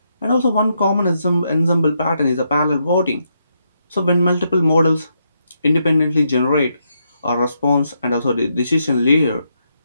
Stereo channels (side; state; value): both; inverted; correlation -0.80